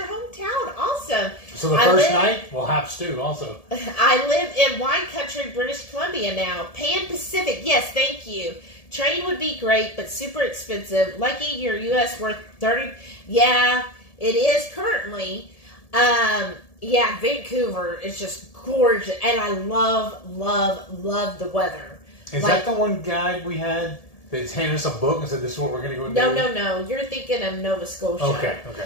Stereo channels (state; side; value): late; right; 1.7 ms